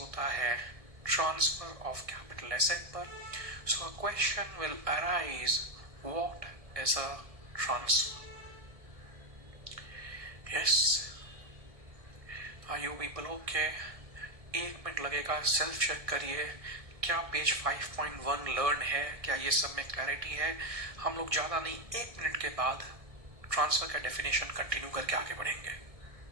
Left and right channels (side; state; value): left; late; 1.6 ms